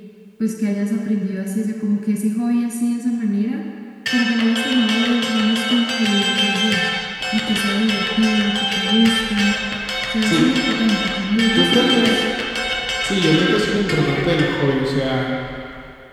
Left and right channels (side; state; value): both; identical; correlation 1.00